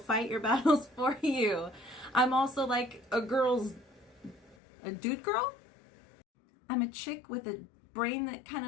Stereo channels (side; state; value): right; drops out; at 4.5 s